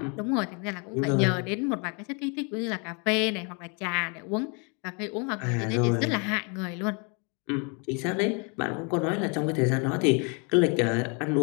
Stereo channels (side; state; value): right; quieter; 34.1 dB